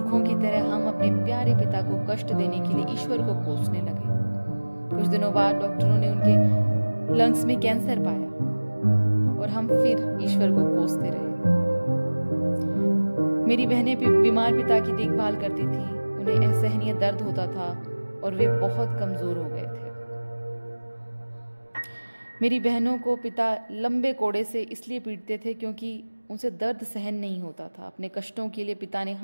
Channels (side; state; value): both; inverted; correlation -1.00